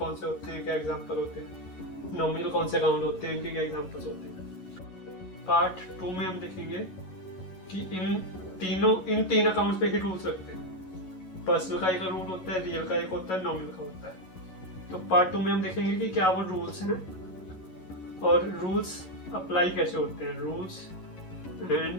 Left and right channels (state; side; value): late; right; 11 ms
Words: से होते हैं, क्या एग्जांपल होते हैं, नॉमिनल कौन से अकाउंट होते हैं, इनके क्या एग्जांपल्स होते हैं। पार्ट 2 में हम देखेंगे कि इन तीन अकाउंट्स पे ही रूल्स रखते हैं। पर्सनल का एक रूल होता है, रियल का एक होता है, नॉमिनल का होता है। तो पार्ट 2 में हम देखेंगे कि क्या वो रूल्स हैं और रूल्स अप्लाई कैसे होते हैं, rules